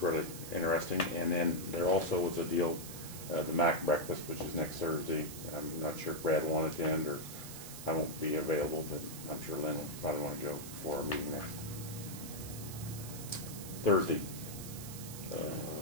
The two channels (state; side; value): noise; right; hiss, 11 dB below the sound